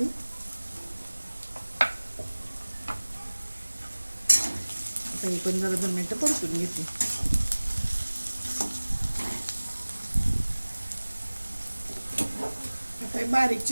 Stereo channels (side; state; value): both; inverted; correlation -1.00